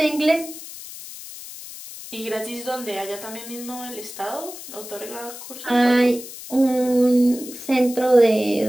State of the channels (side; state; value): left; noise; hiss, 13 dB below the sound